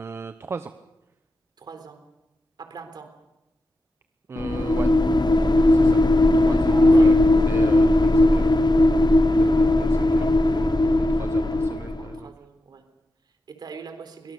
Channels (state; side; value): normal; both; correlation 0.89